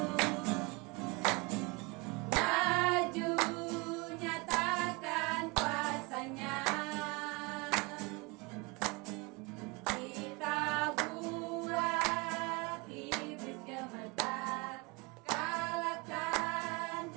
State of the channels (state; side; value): quieter; left; 27.6 dB